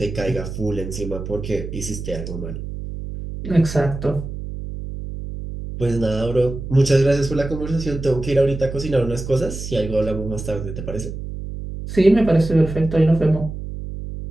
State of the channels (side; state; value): right; noise; hum, 8 dB below the sound